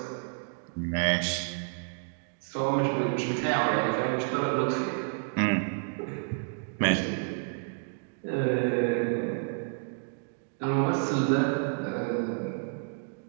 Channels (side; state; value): left; silent; 58 dB below the other